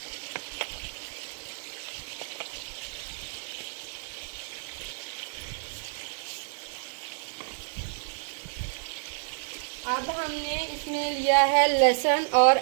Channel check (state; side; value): silent; left; digital silence